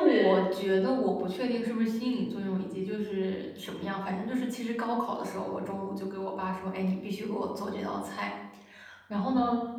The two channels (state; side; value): identical; both; correlation 1.00